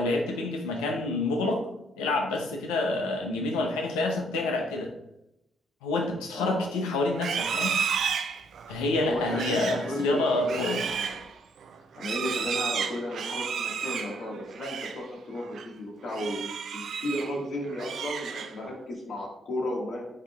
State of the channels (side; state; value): both; normal; correlation 0.66